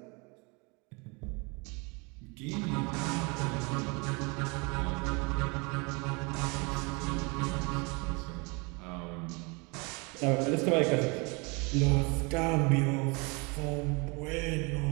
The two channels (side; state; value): left; quieter; 29.4 dB